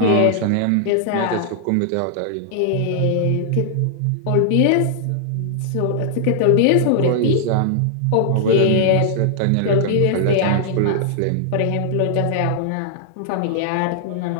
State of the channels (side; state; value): both; different; correlation -0.01